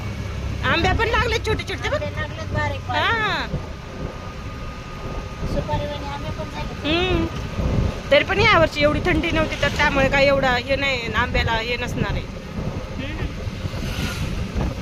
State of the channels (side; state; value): both; identical; correlation 1.00